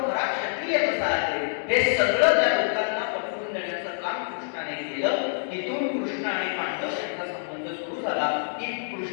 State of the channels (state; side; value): silent; right; digital silence